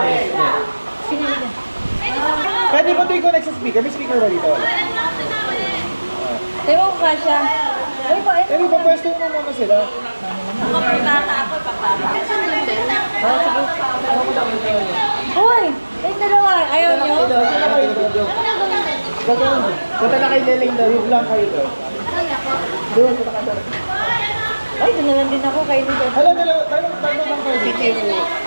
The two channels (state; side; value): inverted; both; correlation -1.00